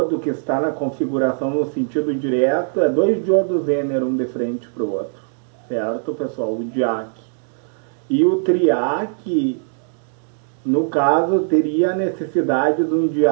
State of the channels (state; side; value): silent; left; 64 dB below the other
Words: que está na configuração no sentido direto. É dois diodos Zener, um de frente para o outro. Certo, pessoal? O diac. E o triac, no caso, teria a necessidade de um